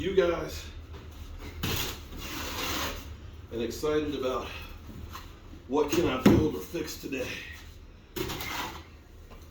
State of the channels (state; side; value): identical; both; correlation 1.00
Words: guys and excited about what can I build or fix today.